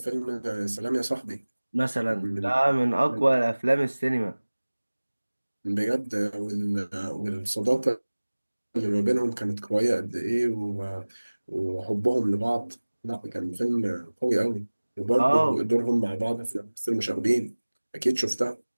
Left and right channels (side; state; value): both; inverted; correlation -1.00